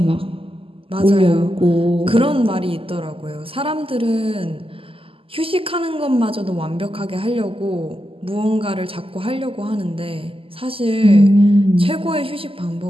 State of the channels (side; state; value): left; late; 0.26 ms